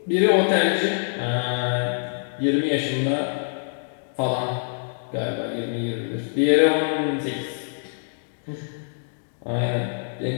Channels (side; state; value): right; silent; digital silence